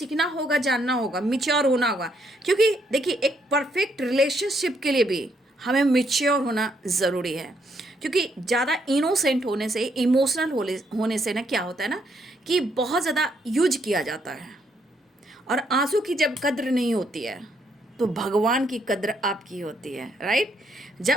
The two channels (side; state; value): both; normal; correlation 0.73